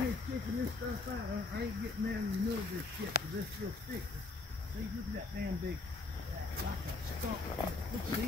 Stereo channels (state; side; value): quieter; right; 3.7 dB